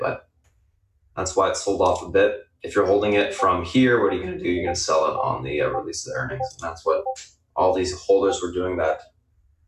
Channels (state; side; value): identical; both; correlation 1.00